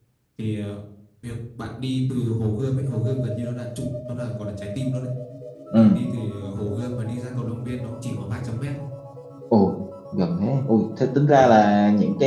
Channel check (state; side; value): identical; both; correlation 1.00